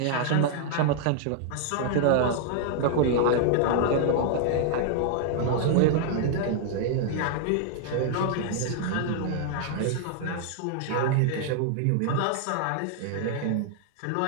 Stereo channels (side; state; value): both; different; correlation 0.00